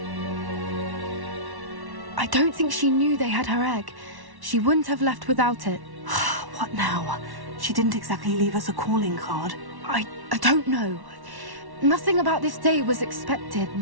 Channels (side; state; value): left; late; 1.1 ms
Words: I don't think she knew they had her egg. She wouldn't have left without it. What now? She didn't exactly leave us a calling card. I don't know. Nothing about this day was expected.